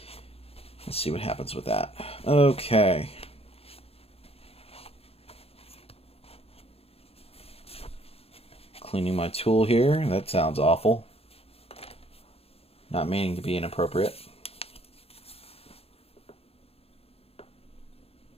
Let's see what happens with that. Okay. Cleaning my tool here. That sounds awful. Not meaning to be inappropriate.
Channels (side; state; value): right; late; 0.29 ms